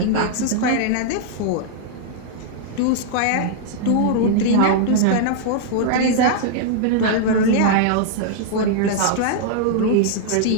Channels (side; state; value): both; different; correlation -0.01